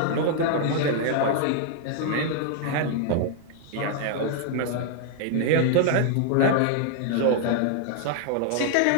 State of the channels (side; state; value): both; different; correlation 0.00